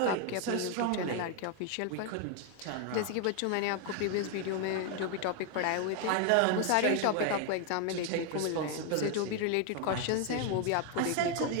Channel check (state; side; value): different; both; correlation 0.01